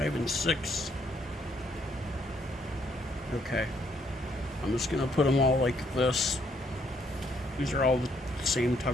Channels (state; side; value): normal; both; correlation 0.70